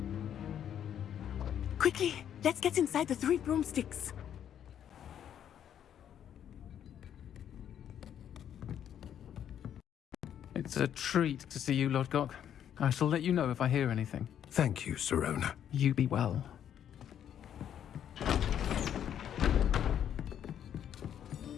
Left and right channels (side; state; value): right; quieter; 9.6 dB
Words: Quickly, let's get inside the Three Broomsticks. It's a treat to see you, Lodgok. I shall let you know if I hear anything. Thank you, Serona. You be well.